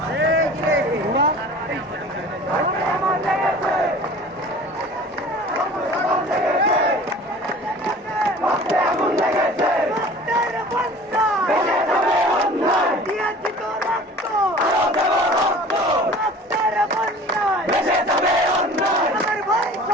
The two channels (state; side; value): normal; both; correlation 0.44